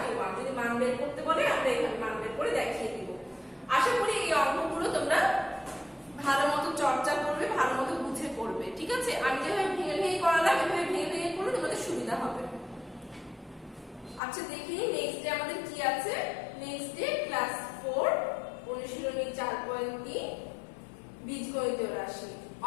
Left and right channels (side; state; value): right; drops out; at 14.2 s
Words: যদি মান বের করতে বলে আমরা এখানে মান বের করে দেখিয়ে দিব আশা করি এই অঙ্কগুলো তোমরা ভালোমতো চর্চা করবে ভালোমতো বুঝে করবে ঠিক আছে আমি যেভাবে ভেঙে ভেঙে করালাম এভাবে ভেঙে ভেঙে করলে তোমাদের সুবিধা হবে আচ্ছা দেখি নেক্সট ডে আমাদের কি আছে নেক্সট ডে ক্লাস 4 অনুশীলনী 4.3 বীজগণিতীয় রাশি